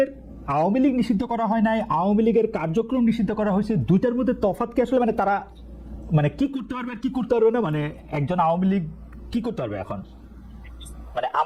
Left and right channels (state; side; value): identical; both; correlation 1.00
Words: লীগ নিষিদ্ধ করা হয় নাই, আওয়ামী লীগের কার্যক্রম নিষিদ্ধ করা হয়েছে। দুইটার মধ্যে তফাৎ কি আসলে? মানে তারা মানে কি করতে পারবে আর কি করতে পারবে না, মানে একজন আওয়ামী লীগ কি করতে পারবে এখন?